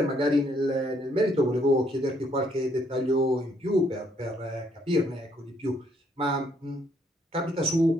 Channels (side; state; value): both; normal; correlation 0.70